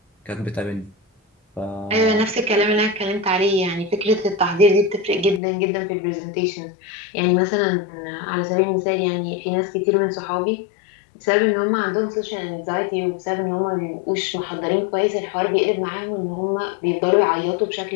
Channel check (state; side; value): drops out; right; at 5.4 s